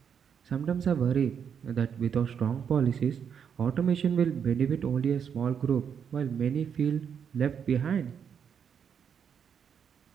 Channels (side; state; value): left; quieter; 7.5 dB